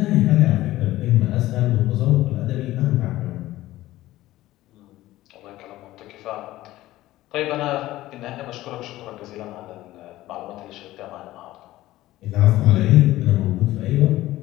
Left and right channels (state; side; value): quieter; right; 16.1 dB